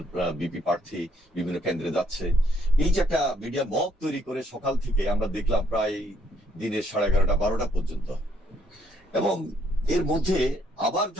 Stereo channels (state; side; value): normal; both; correlation 0.69